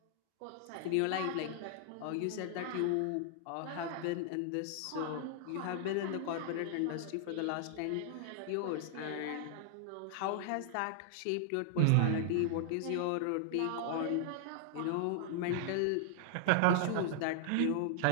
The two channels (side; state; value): both; different; correlation -0.01